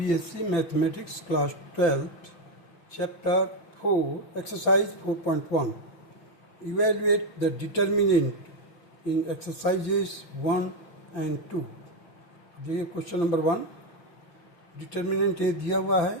Mathematics Class 12th, Chapter 4, Exercise 4.1. Evaluate the determinant in exercises 1 and 2. देखिए question number 1, determinant ए दिया हुआ है,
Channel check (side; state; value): right; late; 5.9 ms